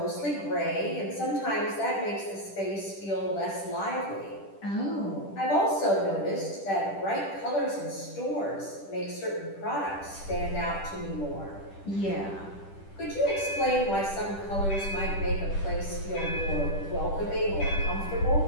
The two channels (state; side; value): late; right; 10 ms